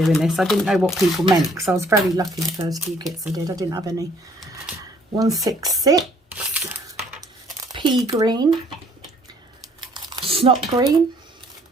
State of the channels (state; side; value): normal; both; correlation 0.62